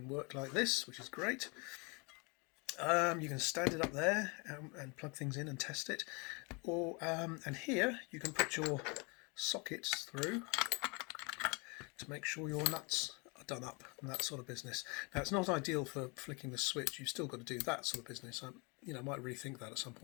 work like this, which is great. You can stand it up there and plug things in and test it, or and here you can put your sockets through to make sure your nuts are done up and that sort of business. Now it's not ideal for flicking the switch, you've still got to do that sort of business. I might rethink that at some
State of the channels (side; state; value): right; quieter; 30.9 dB